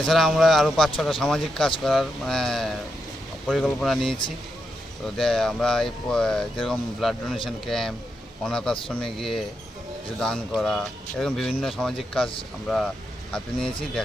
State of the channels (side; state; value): both; normal; correlation 0.84